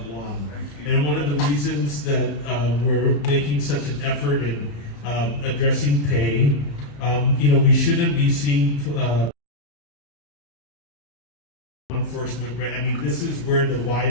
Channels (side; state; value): right; late; 34 ms